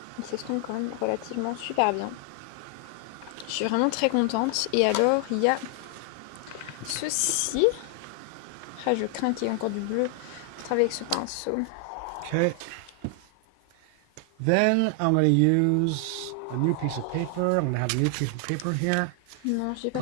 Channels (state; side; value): different; both; correlation 0.00